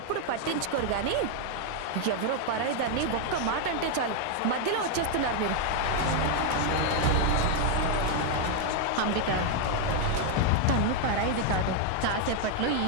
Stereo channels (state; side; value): different; both; correlation 0.00